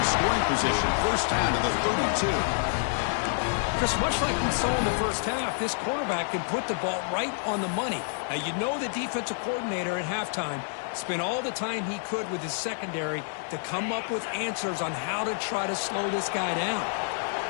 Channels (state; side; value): silent; right; digital silence